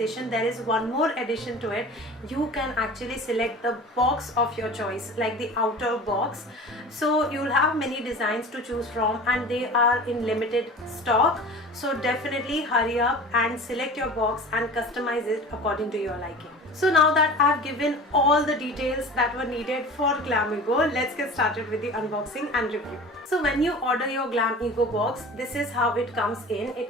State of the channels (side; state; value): both; normal; correlation 0.38